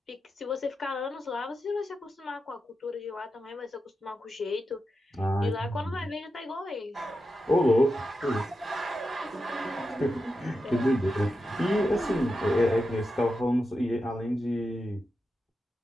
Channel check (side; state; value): both; normal; correlation 0.89